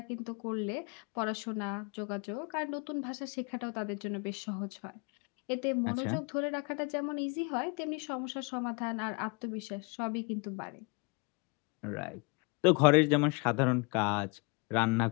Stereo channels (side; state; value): right; quieter; 31.6 dB